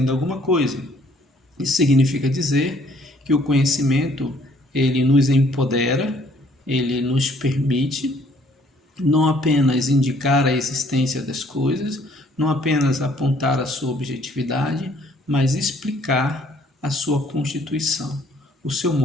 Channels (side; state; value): both; normal; correlation 0.62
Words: alguma coisa. Isso significa dizer que o conhecimento, ele nos empodera, ele nos permite não apenas indicar a existência das coisas, não apenas apontar a sua objetividade, mas explicar a sua constituição, o seu